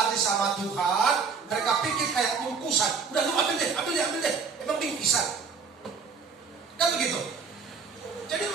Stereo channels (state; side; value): quieter; left; 5.5 dB